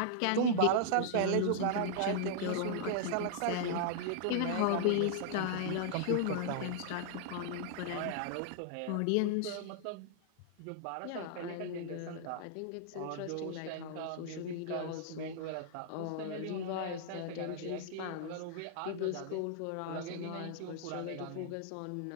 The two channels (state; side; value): different; both; correlation -0.01